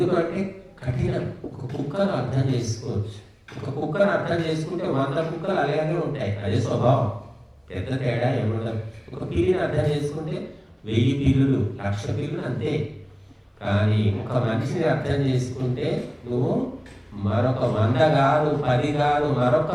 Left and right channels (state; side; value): identical; both; correlation 1.00